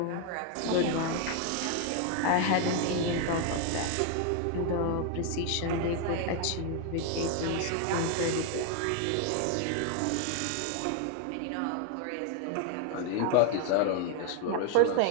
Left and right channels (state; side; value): different; both; correlation 0.01